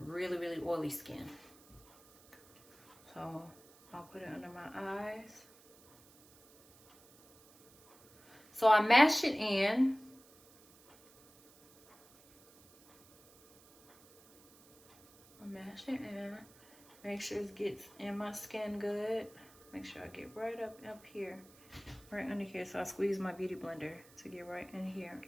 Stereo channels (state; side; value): noise; right; hiss, 25 dB below the sound